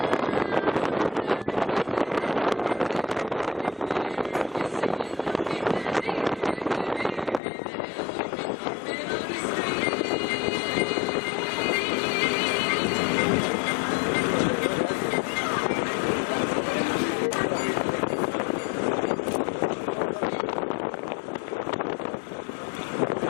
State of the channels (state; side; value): drops out; right; at 7.4 s